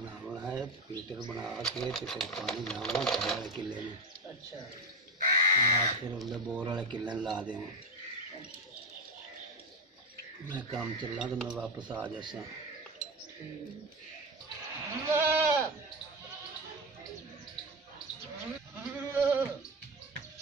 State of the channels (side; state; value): both; normal; correlation 0.16